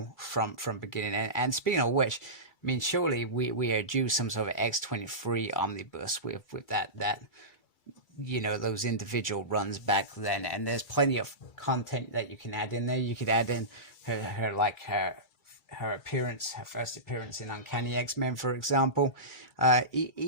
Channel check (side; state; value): right; late; 2.3 ms